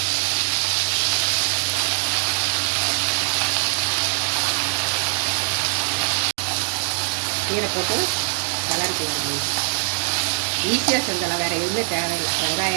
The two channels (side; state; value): left; silent; digital silence